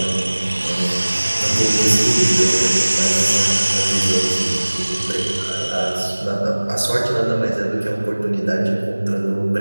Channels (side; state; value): both; inverted; correlation -1.00